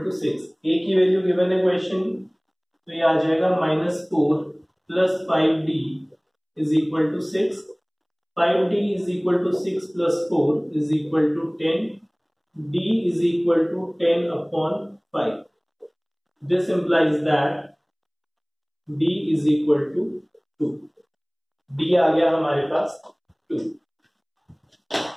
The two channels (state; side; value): identical; both; correlation 1.00